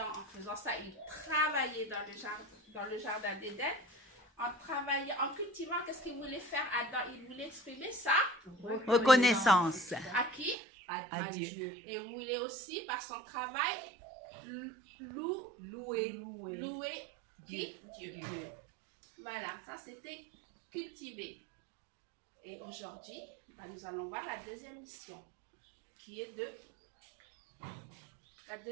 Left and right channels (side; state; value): left; drops out; at 10.6 s